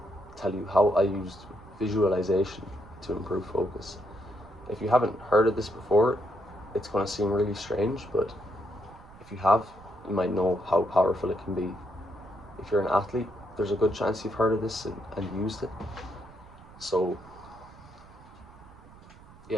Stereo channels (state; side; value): noise; right; rumble, 21 dB below the sound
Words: tell you how I used visualization to improve focus. If you haven't heard of this before, it's going to seem really strange, but if you have, you might know how powerful it can be. If you're an athlete, there's a good chance you've heard of this and used it. So